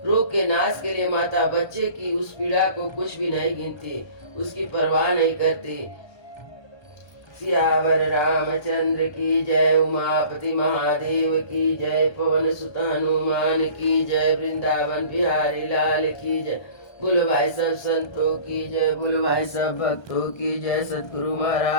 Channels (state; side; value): late; right; 1.3 ms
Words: रोग के नाश के लिए माता बच्चे की उस पीड़ा को कुछ भी नहीं गिनती, उसकी परवाह नहीं करती। सियावर रामचंद्र की जय, उमापति महादेव की जय, पवन सुत हनुमान की जय, वृंदावन बिहारी लाल की जय। बोलो भाई सब संतों की जय, बोलो भाई सब भक्तों की जय, सतगुरु